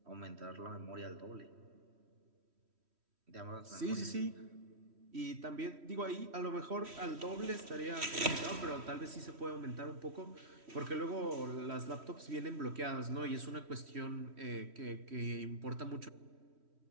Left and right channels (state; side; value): late; left; 3.1 ms